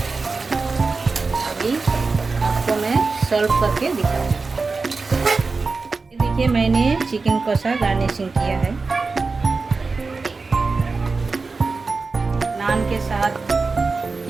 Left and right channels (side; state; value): left; quieter; 4.1 dB